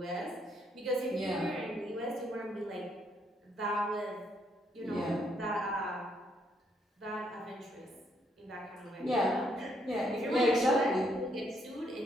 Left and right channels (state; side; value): normal; both; correlation 0.72